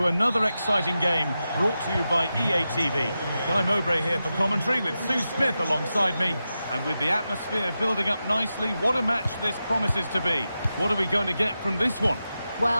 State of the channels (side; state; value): both; inverted; correlation -0.91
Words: another exciting game brought to you by EA TV. Guy Mowbray here for commentary with Sue Smith alongside me. And with the atmosphere building up nicely, what a match this promises to be. What are we going to get from this one?